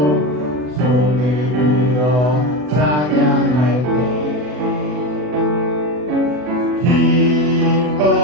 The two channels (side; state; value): left; late; 40 ms